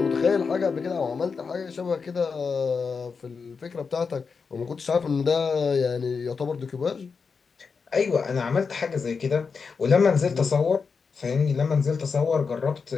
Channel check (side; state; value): right; quieter; 5.3 dB